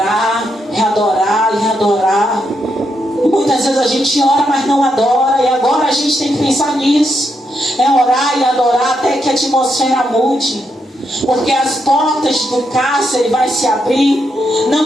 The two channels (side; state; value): both; normal; correlation 0.81